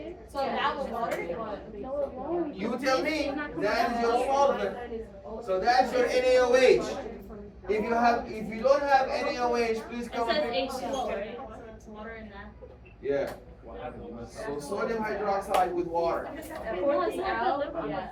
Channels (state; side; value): identical; both; correlation 1.00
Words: So that was water? You tell me. That is your solvent. So that's your NaOH. If you don't have NaOH, please It come says and pick. H2O, right? It's water in that. Yeah. So sodium hydroxide with water. Pour this out. Yeah.